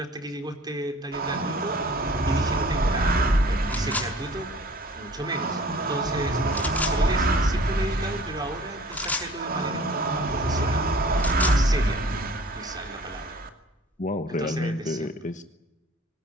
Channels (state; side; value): normal; both; correlation 0.48